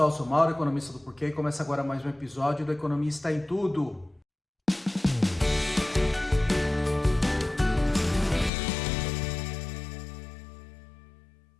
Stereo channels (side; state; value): right; drops out; at 8.5 s